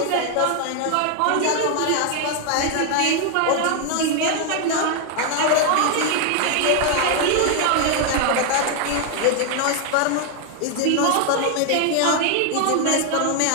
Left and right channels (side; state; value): both; different; correlation 0.00